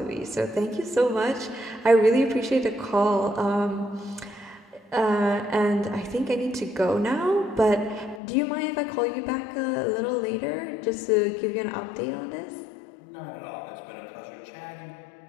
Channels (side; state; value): right; drops out; at 8.2 s